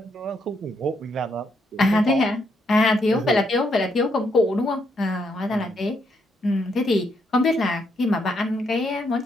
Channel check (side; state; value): both; normal; correlation 0.76